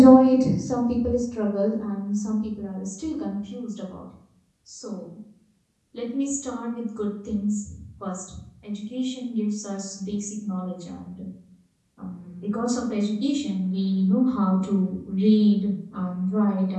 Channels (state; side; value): identical; both; correlation 1.00